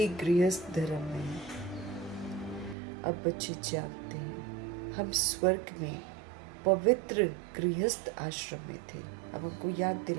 गृहस्थ धर्म में। अब बच्चे जानते हैं हम स्वर्ग में पवित्र गृहस्थ आश्रम में थे। अब हमको याद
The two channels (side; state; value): left; drops out; at 2.8 s